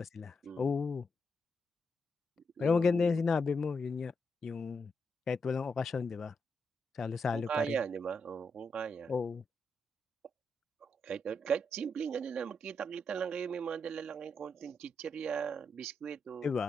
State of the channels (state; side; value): normal; both; correlation 0.83